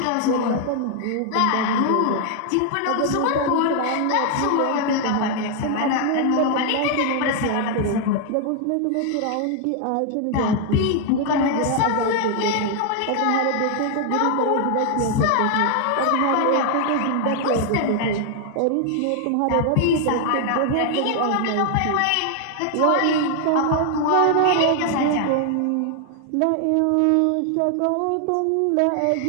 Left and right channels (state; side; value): different; both; correlation 0.00